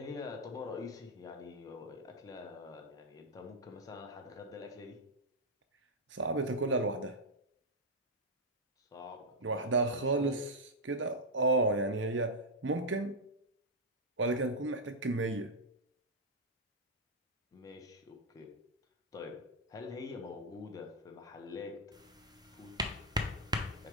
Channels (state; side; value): normal; both; correlation -0.04